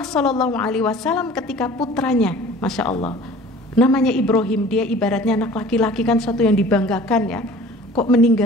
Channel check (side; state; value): both; normal; correlation 0.46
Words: Shallallahu Alaihi Wasallam ketika putranya, masya Allah, namanya Ibrahim, dia ibaratnya anak laki-laki kan suatu yang dibanggakan ya, kok